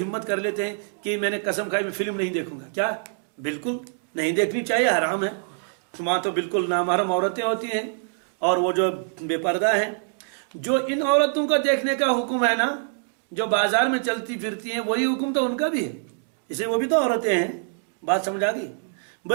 ہمت کر لیتے ہیں کہ میں نے قسم کھائی میں فلم نہیں دیکھوں گا. کیا؟ بالکل نہیں دیکھنی چاہیے، حرام ہے. وہاں تو بالکل نامحرم عورتیں ہوتی ہیں اور وہ جو بے پردہ ہیں. جو ان عورتوں کا دیکھنے کا حکم ہے نا، جو بازار میں چلتی پھرتی ہیں، وہی حکم تو ان کا بھی ہے. اسے وہ بھی تو عورتیں ہیں. بات سمجھ آ گئی؟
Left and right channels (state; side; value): silent; left; digital silence